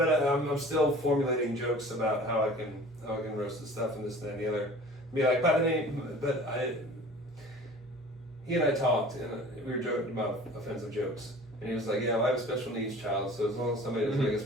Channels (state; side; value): normal; both; correlation 0.44